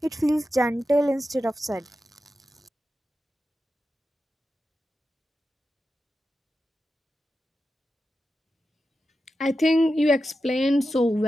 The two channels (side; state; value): both; normal; correlation 0.91